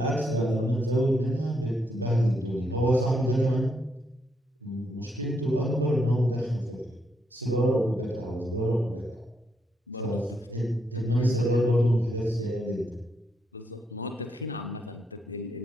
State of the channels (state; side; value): normal; both; correlation 0.77